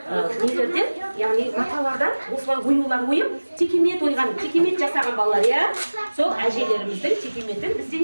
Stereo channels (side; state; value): both; inverted; correlation -1.00